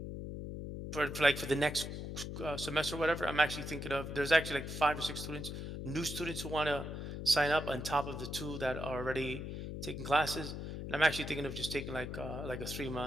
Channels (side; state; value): left; noise; hum, 6 dB below the sound